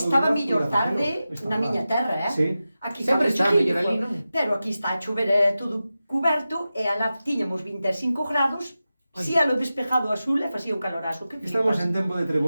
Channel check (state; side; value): inverted; both; correlation -0.93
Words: mellor tarde na miña terra, Sí. Aquí sempre está mellor ali, non? Pero aquí está a chover todo cuberto e alá tiñamos 25 grados. Si a lo despejado azul e facía un calorazo. Que Estamos en tempo de